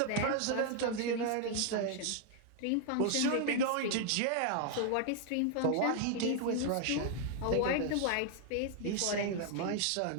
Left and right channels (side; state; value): both; different; correlation 0.00